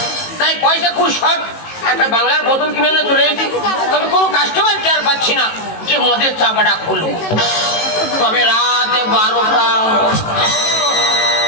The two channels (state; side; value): late; right; 18 ms